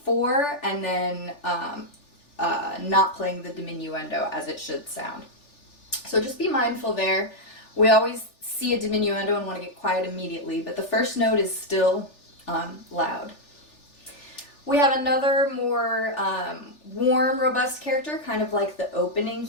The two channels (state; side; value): late; right; 3.4 ms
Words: 4 and then not playing the diminuendo as it should sound. So just be mindful there. We always see a diminuendo and want to get quiet immediately, but the first note is still loud. We have another more warm, robust character, kind of like the opening